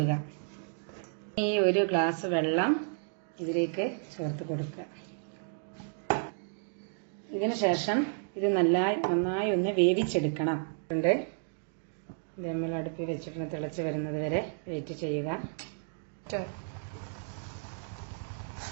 ഈ 1 ഗ്ലാസ് വെള്ളം ഇതിലേക്ക് ചേർത്ത് കൊടുക്കുക. ഇതിനു ശേഷം ഇത് നന്നായി ഒന്ന് വേവിച്ചെടുക്കണം. ഇത് നമ്മൾ അടുപ്പിൽ വെച്ചിട്ട് തിളച്ച് വരുന്നത് വരെ വെയിറ്റ് ചെയ്യുക.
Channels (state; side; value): silent; left; digital silence